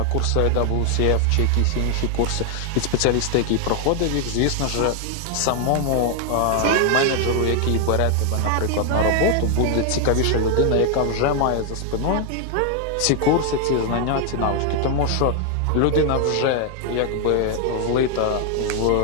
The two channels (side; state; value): both; different; correlation 0.00